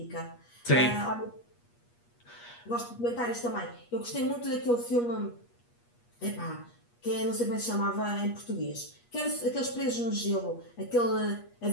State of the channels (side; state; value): right; late; 8.4 ms